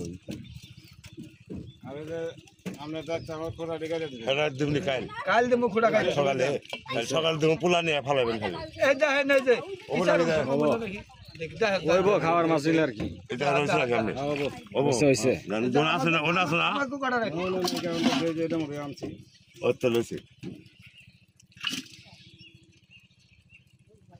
আমি যে আমরা যাচ্ছি আমার খোলা ডিগারে দিই রাত দিমনি কাল কাল দেবো খুঁড়া খাই সকালে সকাল দিম পোলা নিয়ে ফালাবেন খালি এই যা হে না যে ওটা নিয়ে দেখদা হে ওইবো খাওয়ার মাছ হইলে আর কি এটা রইছে না কেমনে ওবো হইছে ওনা আছে না ওনা আছে না আমার কো কাটা রাখি এটা মরে আনছি ও তো লইছে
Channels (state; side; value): identical; both; correlation 1.00